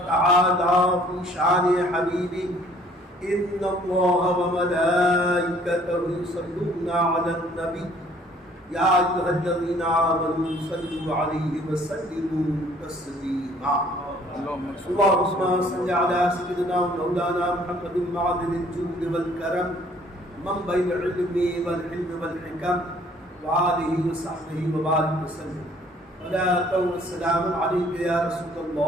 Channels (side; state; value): both; normal; correlation 0.58